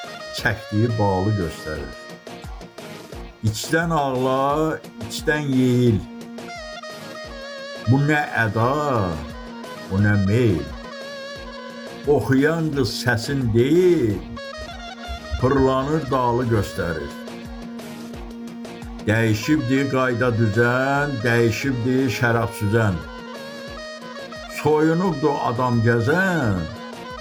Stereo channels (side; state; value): both; identical; correlation 1.00